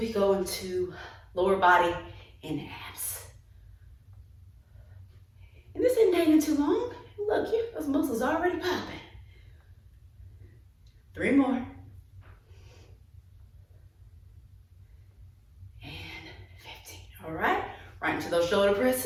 go into lower body and abs. And this isn't taking too long. Look, those muscles already popping. 3 more. And 15. All right. Right into those shoulder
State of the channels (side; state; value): both; identical; correlation 1.00